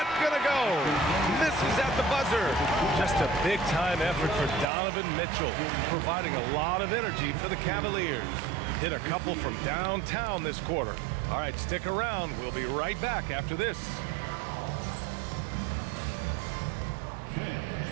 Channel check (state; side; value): drops out; left; at 4.7 s